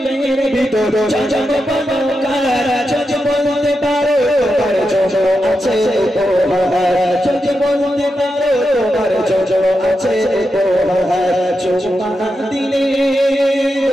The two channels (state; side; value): normal; both; correlation 0.88